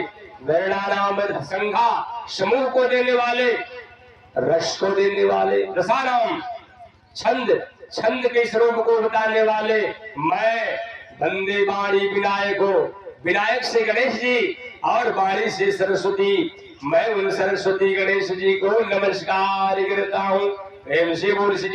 वर्णानाम संज्ञा समूह को देने वाले, रस को देने वाले, रसानाम छंद, छंद के स्वरूप को बताने वाले। मैं वंदे वाणी विनायक हो, विनायक से गणेश जी और वाणी से सरस्वती। मैं उन सरस्वती गणेश जी को नमस्कार करता हूँ। प्रेम से बोल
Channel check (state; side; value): identical; both; correlation 1.00